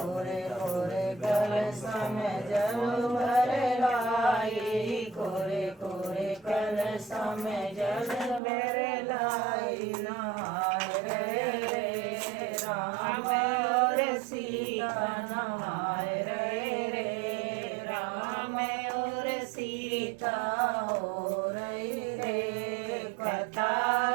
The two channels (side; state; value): left; drops out; at 8.4 s